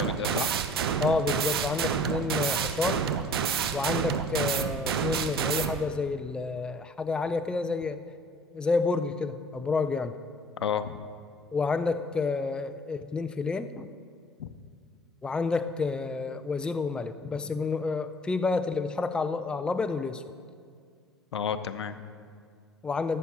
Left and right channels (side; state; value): both; normal; correlation 0.53